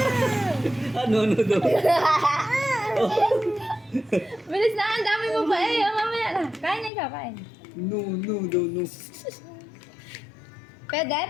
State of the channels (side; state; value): right; drops out; at 6.9 s